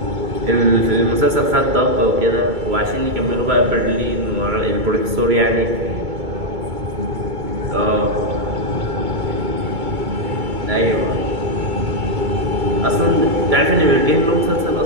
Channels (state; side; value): late; left; 2.2 ms